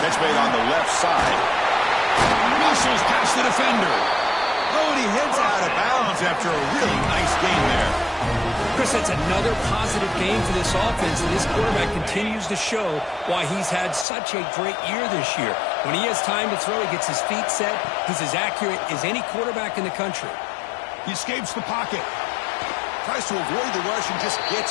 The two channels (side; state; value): right; drops out; at 14.1 s